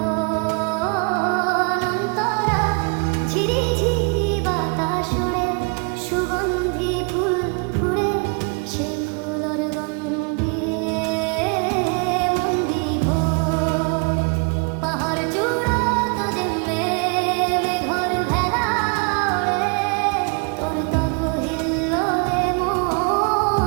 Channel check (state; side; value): quieter; left; 35.0 dB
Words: অন্তরা ঝিরি ঝিরি বাতাস ওড়ে সুগন্ধি ফুল ফুড়ে সে ফুলর গন্ধে মন বিভোর পাহাড় চূড়া তো যেমে মেঘর ভেলা ওড়ে তোর তব হিল্লোলে